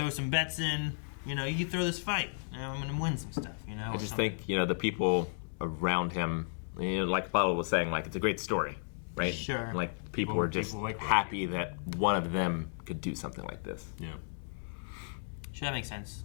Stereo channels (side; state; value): right; silent; digital silence